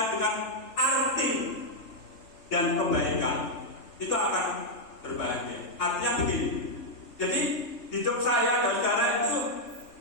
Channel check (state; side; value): late; right; 3.4 ms